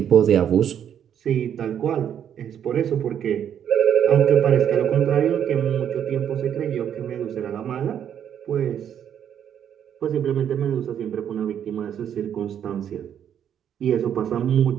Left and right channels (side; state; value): left; quieter; 9.2 dB